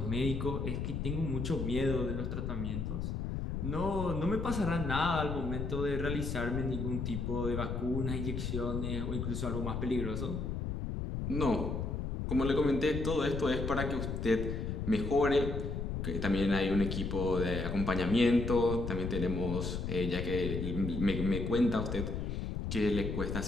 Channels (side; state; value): left; noise; rumble, 3 dB below the sound